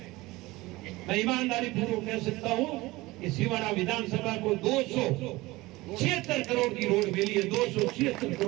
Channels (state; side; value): quieter; left; 20.3 dB